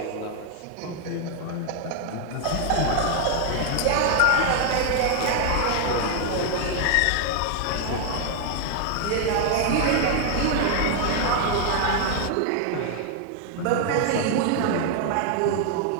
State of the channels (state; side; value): different; both; correlation 0.00